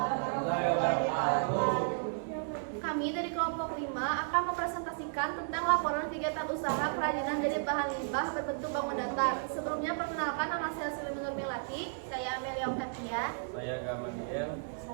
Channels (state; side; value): silent; left; digital silence